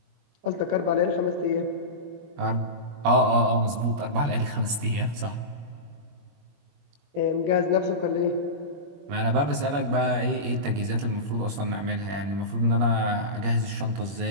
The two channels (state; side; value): late; left; 21 ms